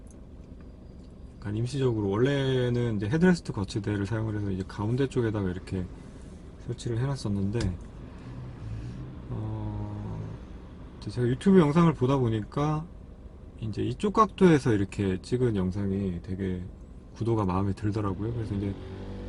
약간 임시적으로, 원래는 이제 헤드레스트 거치대를 사용을 해서 이제 가운데 쪽에다가 이렇게 설치를 해놨었는데, 제가 유튜브 영상을 보다 보니까 이제 이쪽 각도에서 이렇게 찍은 영상이 되게 구도가 마음에 들더라고요. 그래서 이제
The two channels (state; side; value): identical; both; correlation 1.00